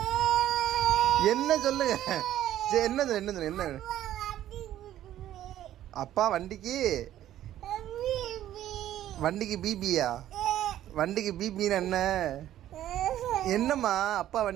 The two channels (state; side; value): quieter; left; 12.5 dB